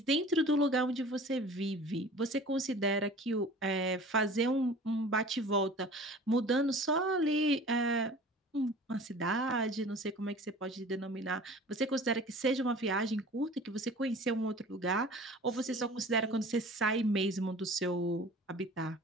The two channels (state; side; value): normal; both; correlation 0.43